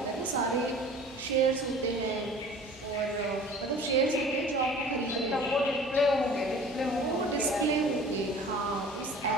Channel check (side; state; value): both; normal; correlation 0.45